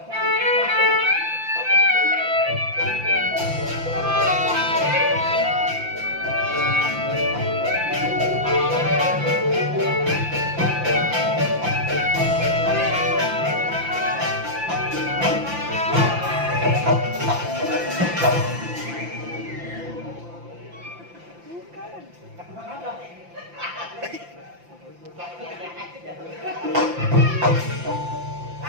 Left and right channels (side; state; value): left; late; 5.8 ms